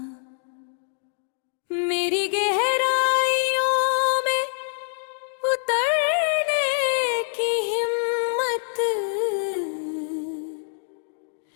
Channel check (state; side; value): silent; right; digital silence